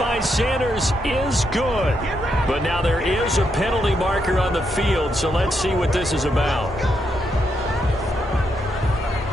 Sanders is good. But now there is a penalty marker on the field, so let's see what this is about.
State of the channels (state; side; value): normal; both; correlation 0.80